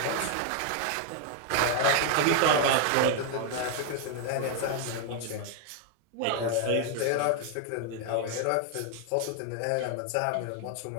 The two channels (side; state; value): both; different; correlation 0.00